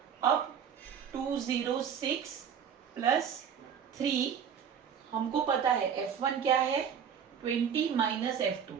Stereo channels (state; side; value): quieter; left; 7.8 dB